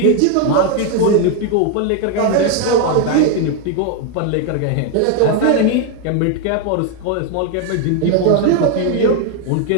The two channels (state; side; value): different; both; correlation 0.01